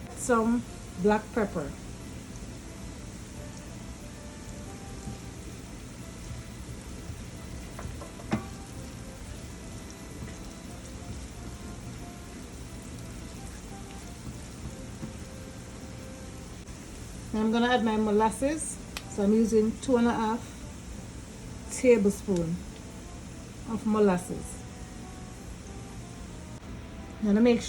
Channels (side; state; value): both; identical; correlation 1.00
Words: Some black pepper. Now I'm gonna add my molasses. So I'm using 2.5 tablespoons of molasses. Now to make